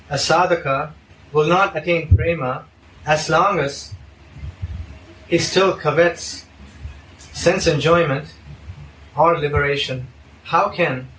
a sadhaka will not attain prema as long as he still covets sense enjoyment or liberation. How can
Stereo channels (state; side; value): identical; both; correlation 1.00